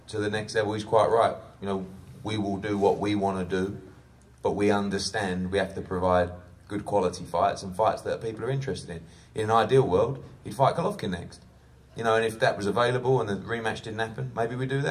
to the next level, he's quite right. You know, we will do what we want to do, but we understand we have to provide good quality fights and fights that people are interested in. In an ideal world, he'd fight Golovkin next. You know, and if that was available and the rematch didn't happen, maybe we'd do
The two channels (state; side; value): identical; both; correlation 1.00